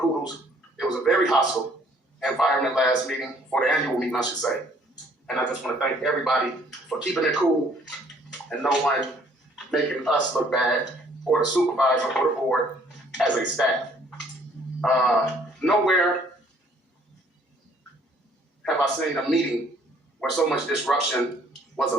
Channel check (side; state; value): both; normal; correlation 0.61